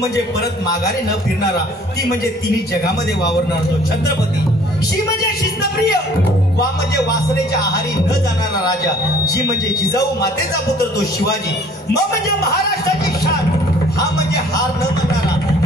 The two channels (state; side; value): normal; both; correlation 0.55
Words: परत माघारी न फिरणारा, ती म्हणजे तिन्ही जगामध्ये वावरणारा तो छत्रपती. शी म्हणजे शिस्तप्रिय, वा म्हणजे वासनेच्या आहारी न जाणारा राजा, जी म्हणजे जिजाऊ मातेचा पुत्र तो शिवाजी, म म्हणजे महाराष्ट्राची शान, हा म्हणजे हार न मानणारा,